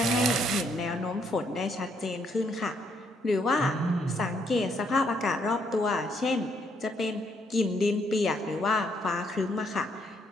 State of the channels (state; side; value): normal; both; correlation 0.72